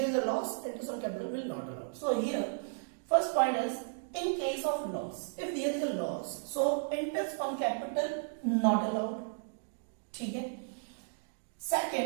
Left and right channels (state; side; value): silent; left; digital silence